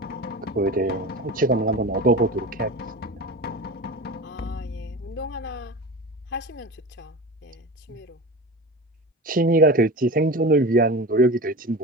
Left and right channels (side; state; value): both; normal; correlation 0.30